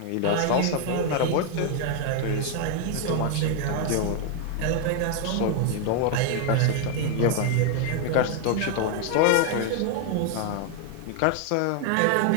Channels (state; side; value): different; both; correlation 0.00